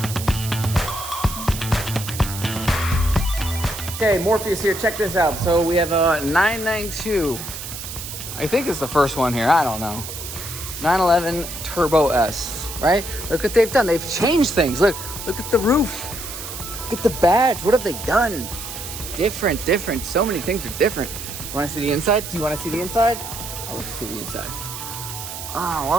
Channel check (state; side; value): noise; right; hiss, 9 dB below the sound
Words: Okay, Morpheus here, check this out. So we have a 992. I think it's the first one here, I don't know. 911 Turbo S, right? Look what they've done. They've changed things. Look at the roof. Look at the badge. What have they done? Different. So many things are different. You wanna see the inside? Do you wanna see the inside? Oh, let's see the inside. Ah,